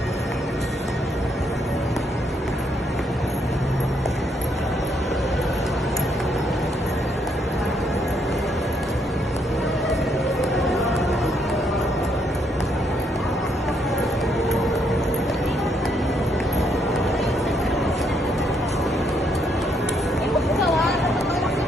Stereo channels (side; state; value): both; normal; correlation 0.73